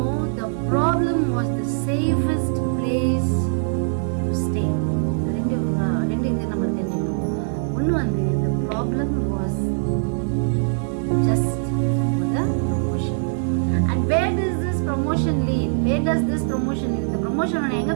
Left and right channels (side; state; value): left; silent; digital silence